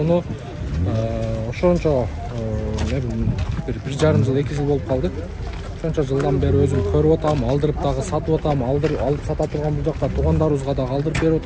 ошончо 1,5 жыл 2 жыл болуп калды. Ошончо жылдан бери өзүм көрүп атам, алдырып дагы сатып атам, алып сата турган бул жакта туугандарыбызга дагы алдырып берип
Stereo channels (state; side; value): identical; both; correlation 1.00